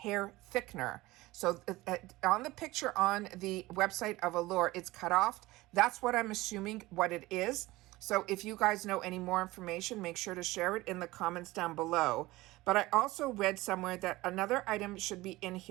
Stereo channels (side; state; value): left; quieter; 19.3 dB